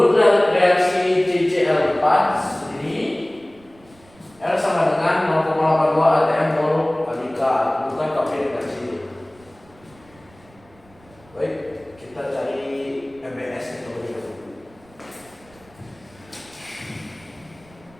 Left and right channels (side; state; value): right; noise; rumble, 27 dB below the sound